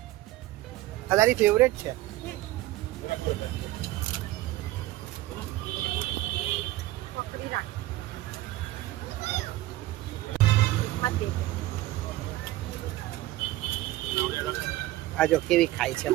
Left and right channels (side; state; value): left; quieter; 16.7 dB